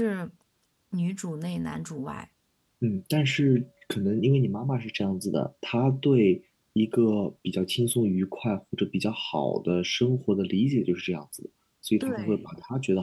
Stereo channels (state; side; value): identical; both; correlation 1.00